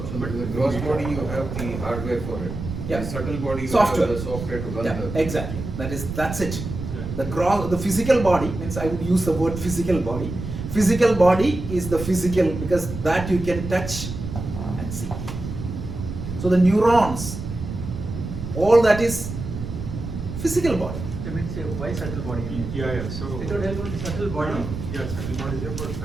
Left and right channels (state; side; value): noise; right; rumble, 7 dB below the sound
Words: in the gross body you have the hardware for it. Yeah. The subtle body you Software. have the software to run Yeah, the. exactly. That's it. Yeah. The physical body means I would use the word physical body. Physical body is the physical because that you can touch and see. So the neurons, all that is physical body. I mean, say, why subtle body? Yeah. So It would help with subtle body. Yeah, subtle body is there, but